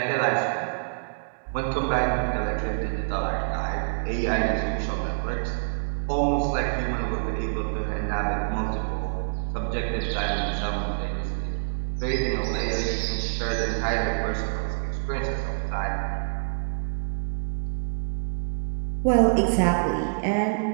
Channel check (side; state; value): left; silent; digital silence